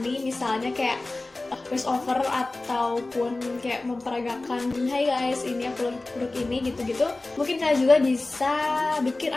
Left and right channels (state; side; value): quieter; right; 3.1 dB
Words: misalnya kayak voice over ataupun kayak memperagakan, hai guys, ini aku produk ini gitu-gitu. Mungkin kalian juga bisa bikin